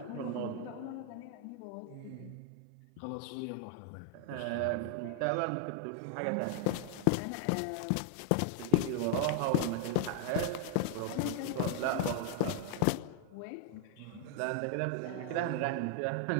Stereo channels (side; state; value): both; different; correlation 0.00